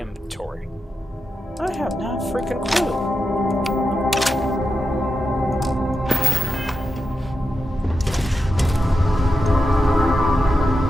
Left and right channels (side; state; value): both; normal; correlation 0.89